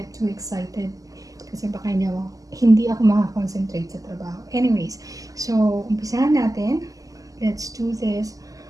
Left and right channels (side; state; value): left; late; 0.17 ms